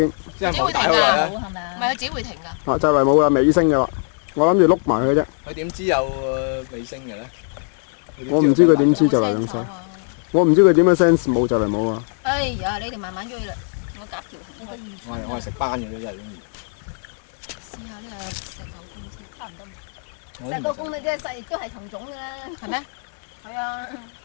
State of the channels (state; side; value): silent; right; 56 dB below the other